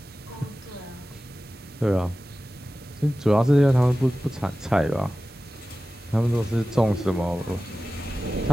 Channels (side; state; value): both; normal; correlation 0.95